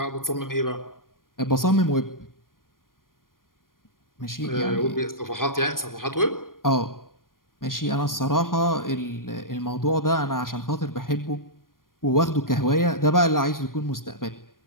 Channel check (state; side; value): late; right; 0.91 ms